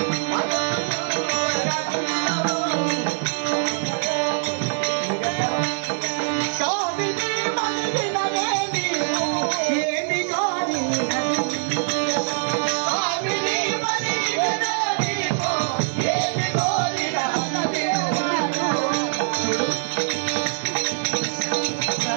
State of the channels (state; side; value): silent; left; 63 dB below the other